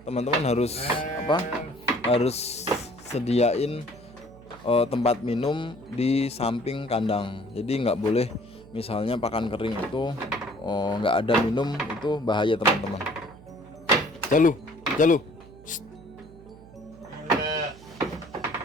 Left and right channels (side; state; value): right; noise; hum, 21 dB below the sound